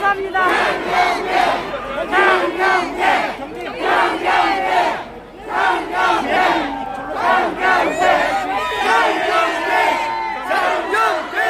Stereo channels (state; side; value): identical; both; correlation 1.00